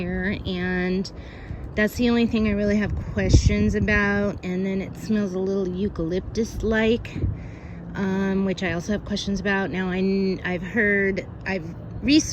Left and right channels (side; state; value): both; identical; correlation 1.00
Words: and that's the only thing I really have questions about. And then it smells a little eucalyptus-like, which I also have questions about. Now I've